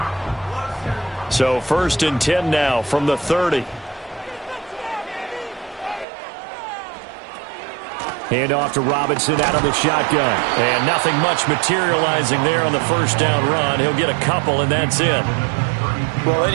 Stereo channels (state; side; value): drops out; left; at 6.1 s